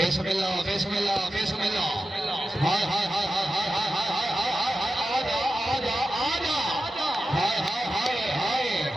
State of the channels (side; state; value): both; normal; correlation 0.92